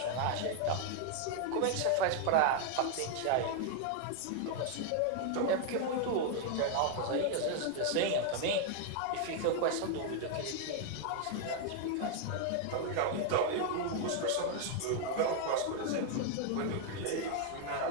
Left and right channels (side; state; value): both; different; correlation 0.00